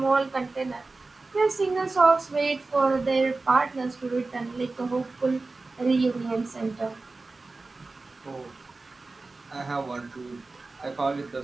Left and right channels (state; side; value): quieter; left; 3.6 dB